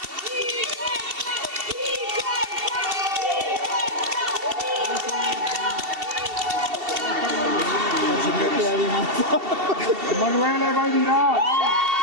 Emanuele, vai di là!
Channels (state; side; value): late; left; 2.7 ms